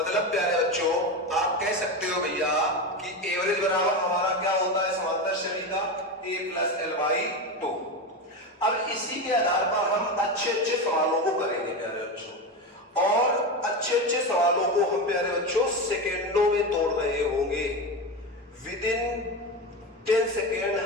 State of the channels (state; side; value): normal; both; correlation 0.19